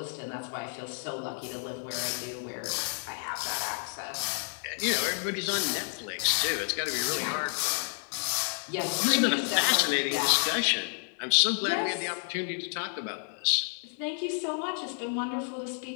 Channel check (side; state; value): right; silent; 58 dB below the other